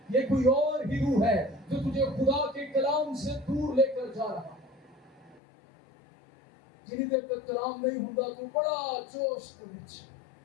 یہ کوئی اور ہی روح ہے جو تجھے خدا کے کلام سے دور لے کر جا رہا ہے۔ جنہیں دیر تک کلام نہیں ہوتا تو بڑا جوش کے بچ،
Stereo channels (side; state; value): right; drops out; at 5.4 s